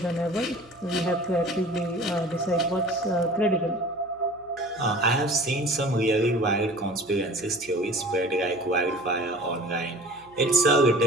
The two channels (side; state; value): right; noise; hum, 29 dB below the sound